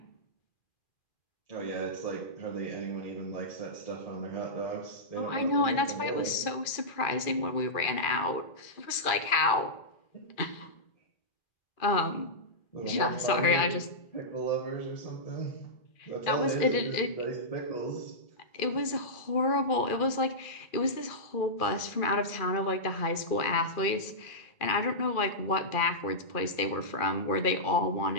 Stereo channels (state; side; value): late; right; 2.4 ms